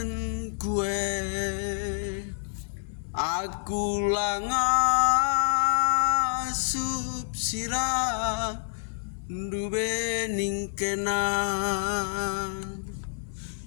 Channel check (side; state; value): right; silent; 56 dB below the other